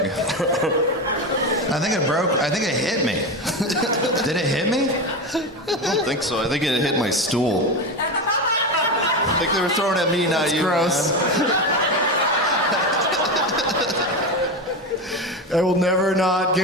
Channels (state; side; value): normal; both; correlation 0.19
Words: I think it broke. I think it hit me. Did it hit me? I don't think so. I think it hit my stool. I think they were throwing at me, not you. Gross. man. I will never not